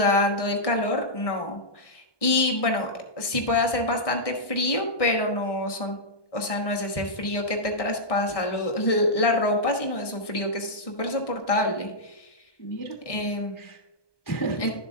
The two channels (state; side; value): late; right; 1.2 ms